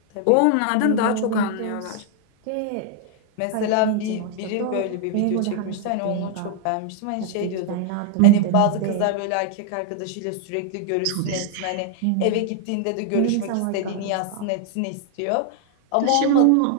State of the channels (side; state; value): both; different; correlation 0.00